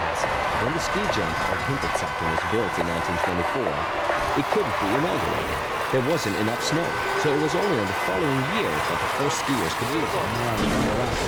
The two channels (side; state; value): both; identical; correlation 1.00